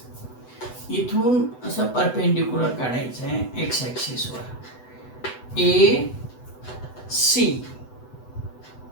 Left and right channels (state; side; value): late; right; 8.0 ms